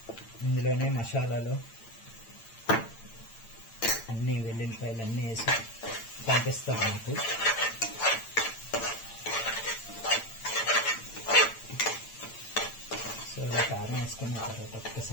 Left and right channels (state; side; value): late; right; 8.9 ms